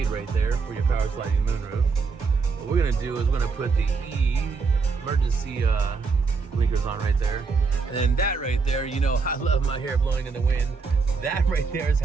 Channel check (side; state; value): left; quieter; 4.8 dB